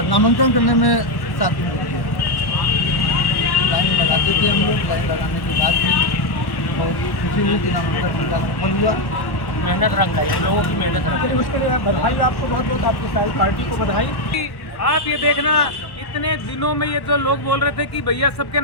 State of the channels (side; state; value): right; late; 1.1 ms